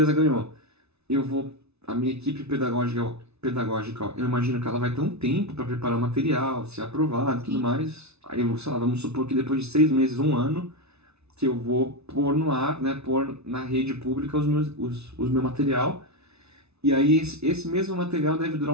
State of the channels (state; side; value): late; left; 0.80 ms